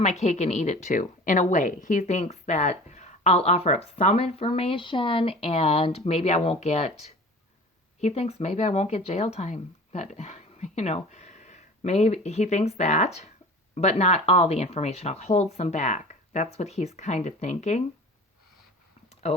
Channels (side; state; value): both; normal; correlation 0.40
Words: my cake and eat it too, in a way. He thinks that I'll offer up some information and maybe I won't get, he thinks maybe I won't get jail time. But, maybe he thinks that, but not all the information. I'll hold some back. That's what he's kind of thinking.